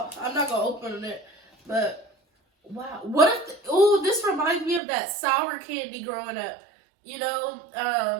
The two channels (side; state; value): left; drops out; at 4.8 s